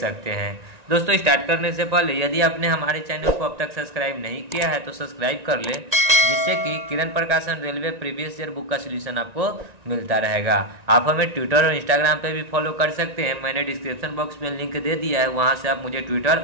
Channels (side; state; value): left; late; 1.9 ms